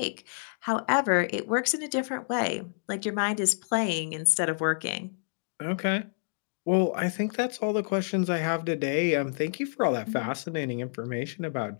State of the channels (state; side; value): silent; right; digital silence